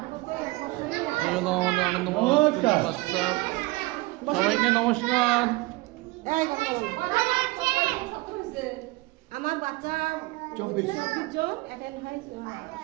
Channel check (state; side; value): quieter; left; 22.1 dB